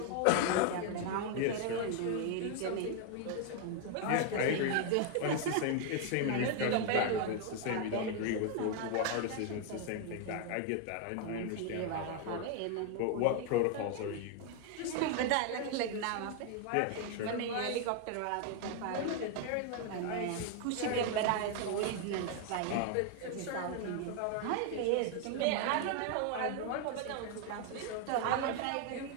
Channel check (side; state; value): both; different; correlation 0.00